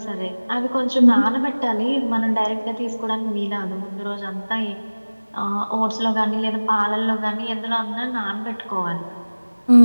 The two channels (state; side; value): inverted; both; correlation -1.00